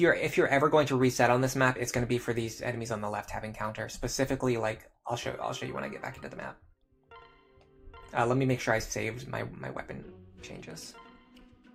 ever going to reset on this map, it's going to be for these enemies on the left having counter. Specifically, like I'll show you when I get back into the map. Let me make sure I saved my weapon changes.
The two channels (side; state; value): both; identical; correlation 1.00